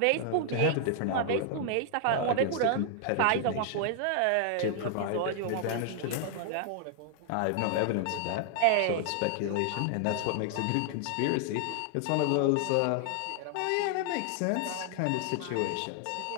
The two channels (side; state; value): both; different; correlation 0.00